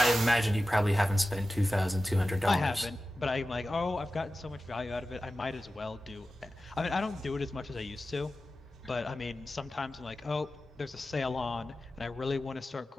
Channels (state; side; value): normal; both; correlation 0.94